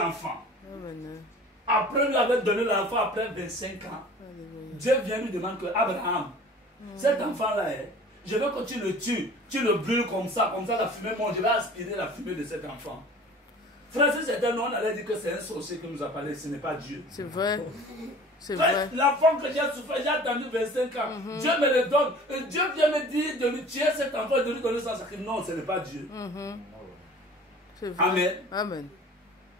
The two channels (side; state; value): both; normal; correlation 0.45